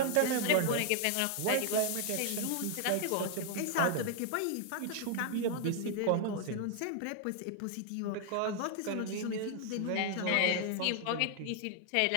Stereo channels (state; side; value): different; both; correlation 0.00